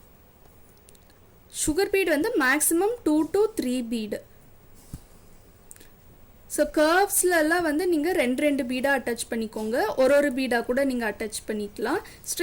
சுகர் பீட் வந்து மேக்ஸிமம் 2 to 3 பீடு. ஸோ கர்வ்ஸ்லலாம் வந்து நீங்கள் ரெண்டு பீடாக அட்டாச் பண்ணிக்கோங்க. ஒரு பீடாக கூட நீங்கள் அட்டாச் பண்ணிக்கலாம்.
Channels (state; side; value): identical; both; correlation 1.00